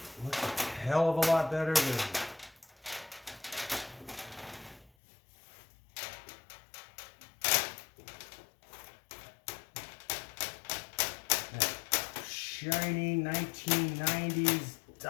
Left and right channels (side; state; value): right; drops out; at 4.9 s